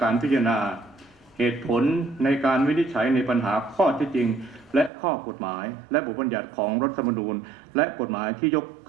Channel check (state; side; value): drops out; left; at 4.9 s